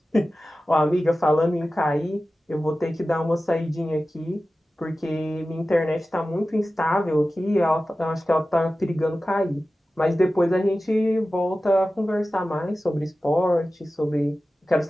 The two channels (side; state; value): both; normal; correlation 0.95